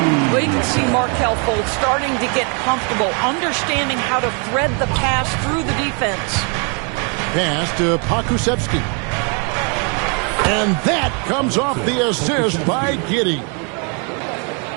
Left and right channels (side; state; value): left; quieter; 36.9 dB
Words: Well, you can see Markelle Fultz starting to get comfortable, understanding how to thread the pass through the defense. Pass to Pakusevsky. And that comes off the assist by Giddey.